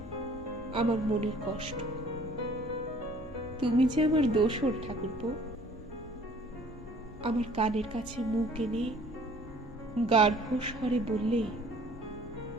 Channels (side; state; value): both; normal; correlation 0.54